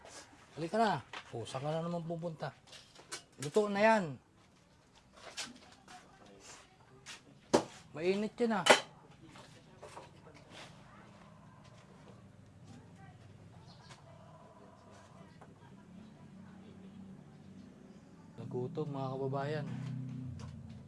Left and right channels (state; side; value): identical; both; correlation 1.00